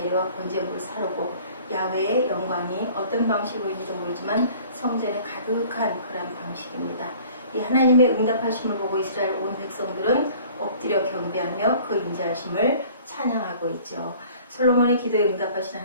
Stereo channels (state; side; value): inverted; both; correlation -0.50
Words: 번제물을 사르고 야훼의 영광이 어떤 방식으로인지도 모르지만 성전에 가득한 그런 방식입니다. 이 하나님의 응답하심을 보고 이스라엘 온 백성들은 엎드려 경배하며 그 인자하심을 찬양하고 있죠. 솔로몬의 기도에 응답하신